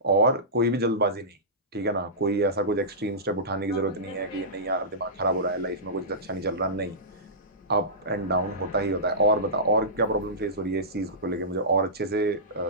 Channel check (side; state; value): both; normal; correlation -0.19